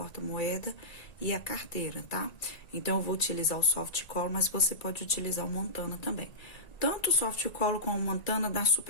e a carteira, tá? Então, eu vou utilizar o soft cola, mas você pode utilizar o montana também. Tanto o soft cola como o montana dá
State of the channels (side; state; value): right; late; 1.9 ms